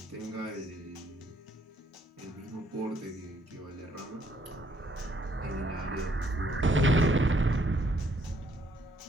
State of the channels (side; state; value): both; normal; correlation 0.68